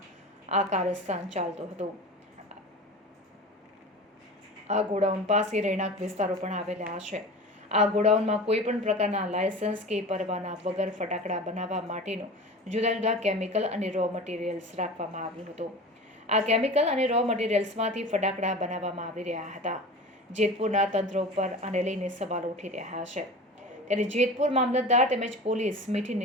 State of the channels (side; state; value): both; normal; correlation 0.34